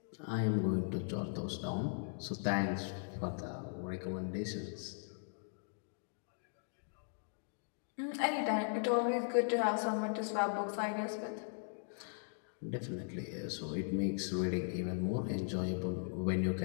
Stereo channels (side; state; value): right; silent; digital silence